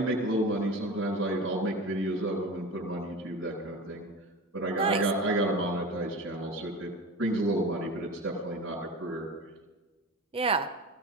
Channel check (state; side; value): normal; both; correlation 0.31